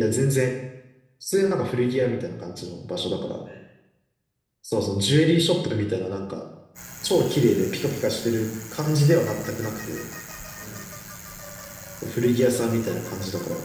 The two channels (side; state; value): both; identical; correlation 1.00